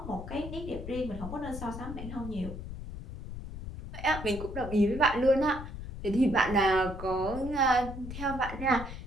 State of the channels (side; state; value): left; noise; rumble, 9 dB below the sound